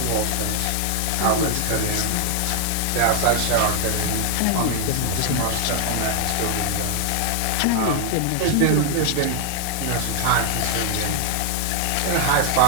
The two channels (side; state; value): both; different; correlation 0.00